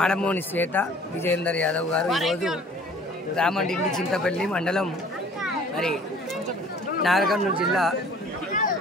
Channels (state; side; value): normal; both; correlation 0.51